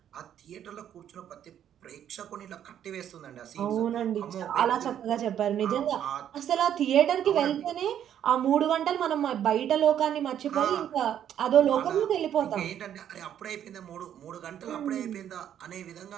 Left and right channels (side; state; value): left; quieter; 10.0 dB